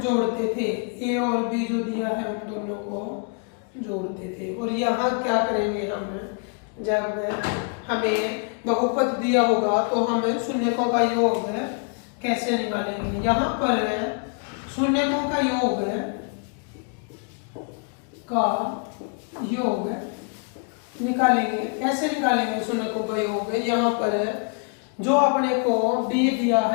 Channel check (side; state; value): right; quieter; 38.3 dB